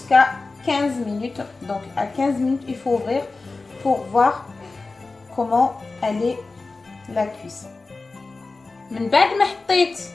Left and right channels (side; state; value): right; quieter; 3.7 dB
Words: 15 minutes. Donc à 15 minutes il faut ouvrir pour voir comment elle est la cuisson. من بعد ما حطيت